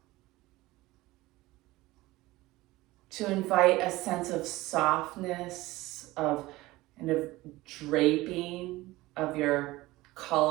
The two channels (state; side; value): quieter; left; 19.0 dB